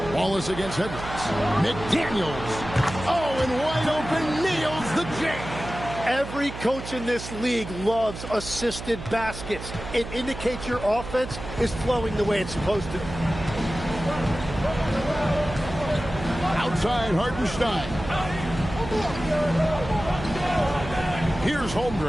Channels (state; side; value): noise; right; hum, 10 dB below the sound